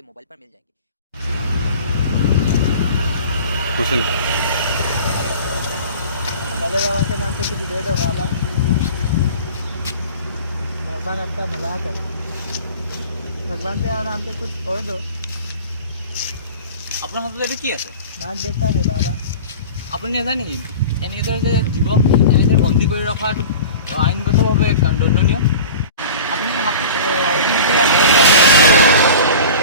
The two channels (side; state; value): both; inverted; correlation -0.38